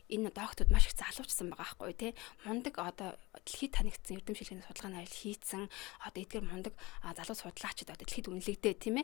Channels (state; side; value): quieter; right; 22.4 dB